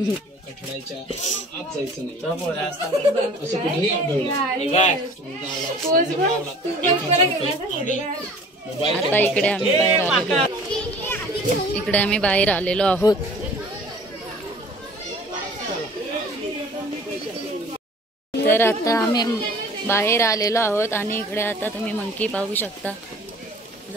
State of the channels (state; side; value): normal; both; correlation 0.48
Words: कठड्याच्या आत जायचं नाही तो पोरा असता. असं कुठेही आढळलं हे बाय. मोबाईल आता इकडे आम्ही बाहेर आलेलो इकडे आम्ही बाहेर आलेलो आहोत तर आता आम्ही बाहेर आलेलो आहोत आणि इकडे आता तुम्ही मंकी पाहू शकता